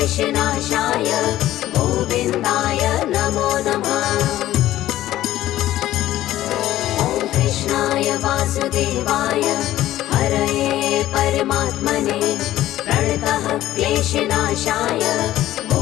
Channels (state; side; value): quieter; right; 14.1 dB